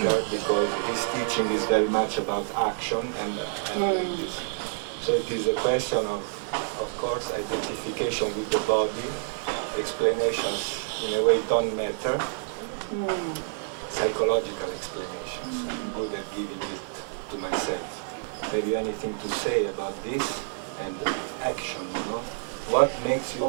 because his teaching is very much about action and like this. So it is a question of course, identification with the body. Explanations in a way don't matter. Psychological explanations. I'm good at giving it to myself. Have you anything to say about this and action, What makes you...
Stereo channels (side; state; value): left; silent; digital silence